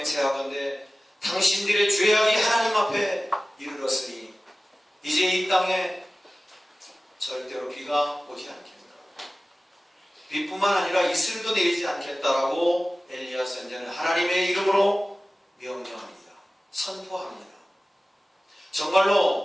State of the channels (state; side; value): normal; both; correlation 0.97